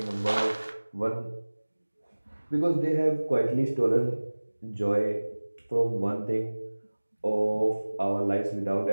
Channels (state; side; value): inverted; both; correlation -1.00